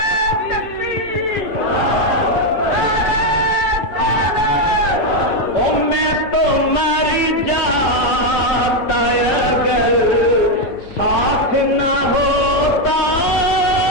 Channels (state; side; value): late; right; 5.8 ms